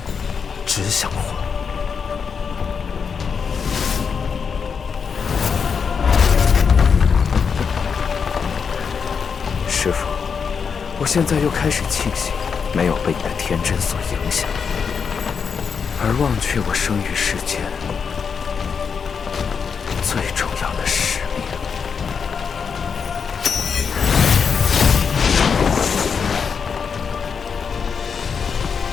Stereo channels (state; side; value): quieter; right; 6.2 dB